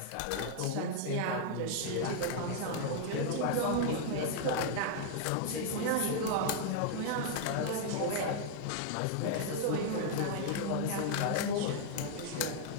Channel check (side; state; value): both; different; correlation -0.01